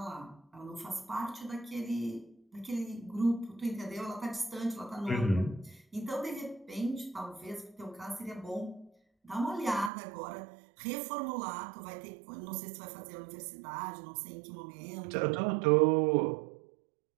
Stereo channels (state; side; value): drops out; left; at 9.9 s